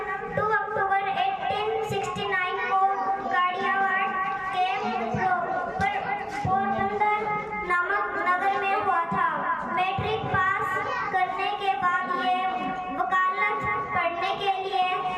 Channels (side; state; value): both; identical; correlation 1.00